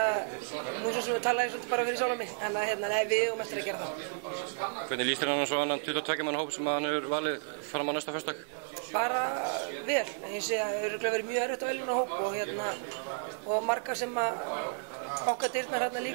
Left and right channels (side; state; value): left; silent; 56 dB below the other